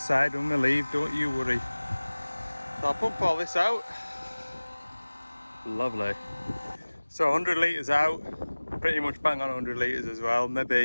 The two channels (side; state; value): both; inverted; correlation -1.00